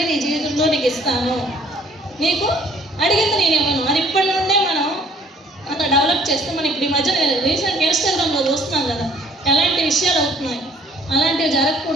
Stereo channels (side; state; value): both; normal; correlation 0.58